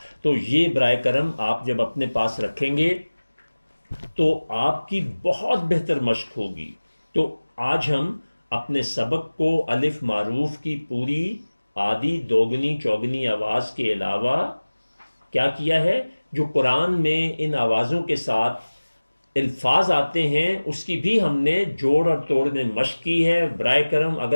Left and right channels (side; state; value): both; inverted; correlation -1.00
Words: تو یہ برائے کرم آپ جب اپنے پاس رکھیں گے تو آپ کی بہت بہتر مشق ہوگی. تو آج ہم اپنے سبق کو الف معروف کی پوری آدھی دوگنی چوگنی آواز کے علاوہ کیا کیا ہے، جو قرآن میں ان آوازوں کے ساتھ الفاظ آتے ہیں اس کی بھی ہم نے جوڑ اور توڑ میں مشق کی ہے. برائے کرم